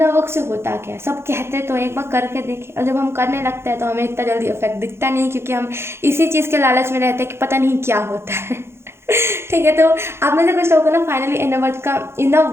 वर्क से होता क्या है, सब कहते तो एक बार करके देखें, और जब हम करने लगते हैं तो हमें इतना जल्दी इफेक्ट दिखता नहीं, क्योंकि हम इसी चीज़ के लालच में रहते हैं कि पता नहीं क्या होता है। ठीक है, तो आप में से कुछ लोगों को ना फाइनली इनर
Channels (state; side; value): late; left; 0.12 ms